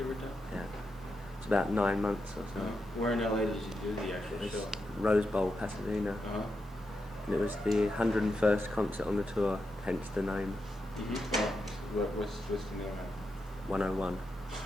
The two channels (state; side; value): normal; both; correlation 0.86